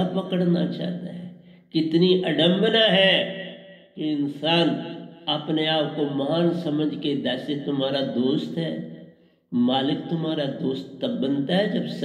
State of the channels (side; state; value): both; identical; correlation 1.00